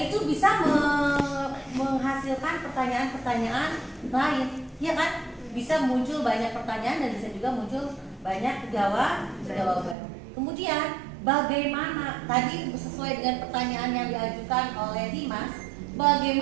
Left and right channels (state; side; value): drops out; left; at 10.0 s